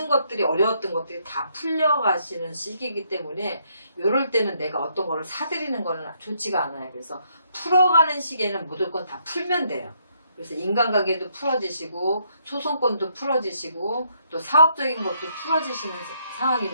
것들이 어려웠던 것들이 다 풀려가시는 시기이기 때문에 이럴 때는 내가 어떤 거를 사들이는 거는 좋지가 않아요. 그래서 풀어가는 시기에는 무조건 다 풀면 돼요. 그래서 인간관계도 풀어지시고 소송권도 풀어지시고 또 사업적인 것도 풀어지시는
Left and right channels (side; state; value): both; inverted; correlation -0.72